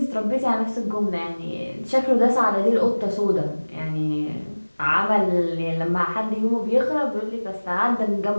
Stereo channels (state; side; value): inverted; both; correlation -1.00